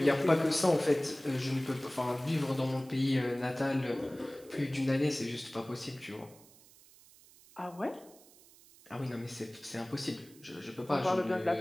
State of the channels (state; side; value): noise; right; hiss, 24 dB below the sound